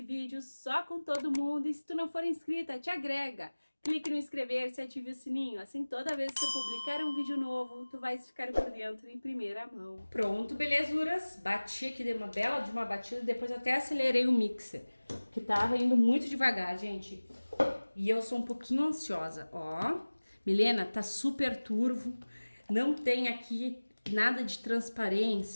vídeo só com todo mundo e se tu não for inscrita, te agrega, clique no inscrever-se, ative o sininho, assim toda vez que eu publicar um vídeo novo, tu vais ficar por dentro em primeira mão. Pronto, belezuras, bati aqui, dei uma bela de uma batida, depois até acelerei o mixer, que tava indo muito devagar, gente, e eu sou um pouquinho ansiosa, ó, Milena, tá super turvo. Não tem aqui nada de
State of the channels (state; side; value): inverted; both; correlation -1.00